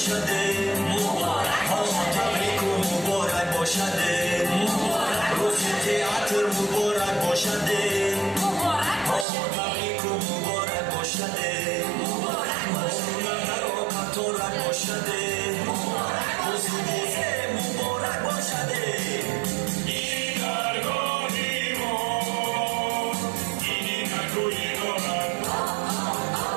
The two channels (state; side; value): drops out; left; at 9.2 s